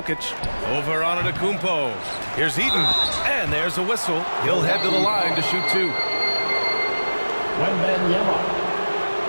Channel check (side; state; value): both; inverted; correlation -1.00